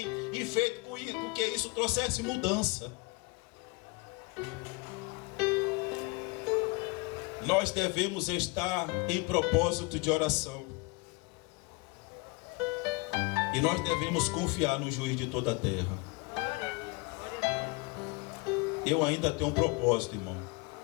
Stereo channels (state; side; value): quieter; right; 26.2 dB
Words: e feito com que isso trouxesse mudança. Nós devemos estar em propósito de oração. E nós devemos confiar no juiz de toda a terra. Eu ainda tenho um propósito, irmão.